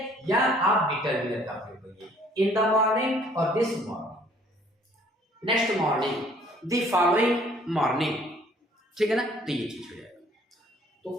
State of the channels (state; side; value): normal; both; correlation 0.58